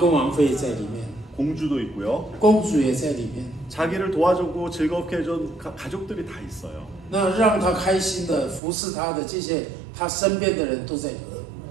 王妃在里面， 공주도 있고요. 公主也在里面。 자기를 도와주고 즐겁게 해준 가족들이 다 있어요. 那让他开心的服侍他的这些他身边的人都在里面。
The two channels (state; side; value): drops out; left; at 8.6 s